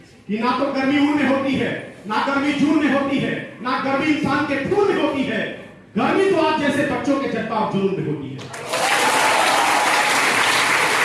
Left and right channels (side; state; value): both; identical; correlation 1.00